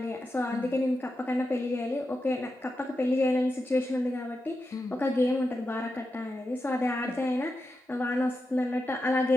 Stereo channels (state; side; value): normal; both; correlation 0.88